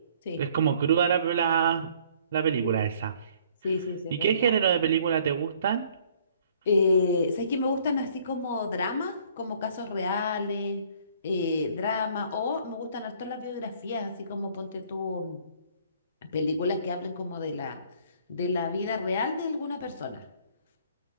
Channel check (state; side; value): inverted; both; correlation -0.59